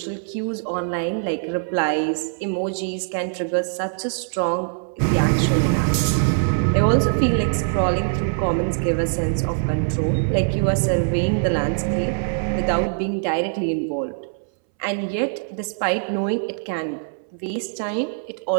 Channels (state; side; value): silent; left; 64 dB below the other